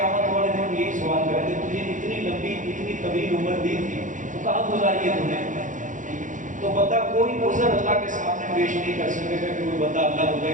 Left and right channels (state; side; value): late; left; 0.37 ms